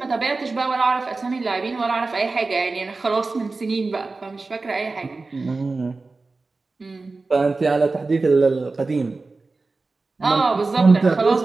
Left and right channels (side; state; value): left; quieter; 3.7 dB